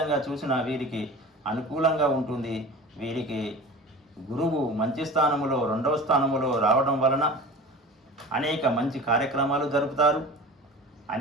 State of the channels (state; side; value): normal; both; correlation 0.37